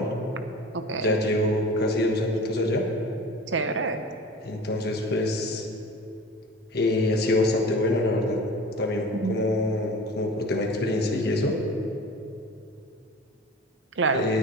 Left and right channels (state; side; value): normal; both; correlation 0.38